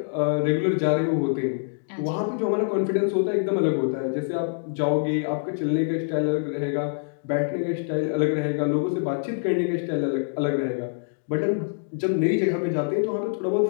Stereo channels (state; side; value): silent; right; digital silence